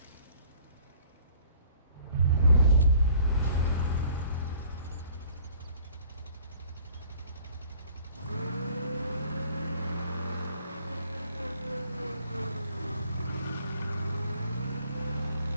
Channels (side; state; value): both; inverted; correlation -0.55